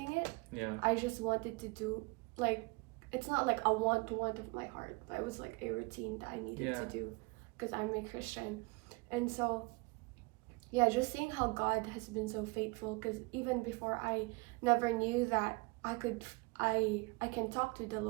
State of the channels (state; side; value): quieter; left; 27.5 dB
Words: it. Yeah. I just wanted to do, like, it's not like a want of my heart, but it was like a routine that I needed to do because I'm a Christian. And so, yeah, just seeing how God has been so faithful, because even before I never knew that I can talk to the